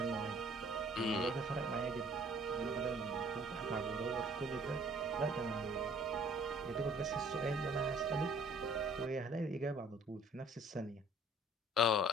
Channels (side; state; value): both; normal; correlation 0.55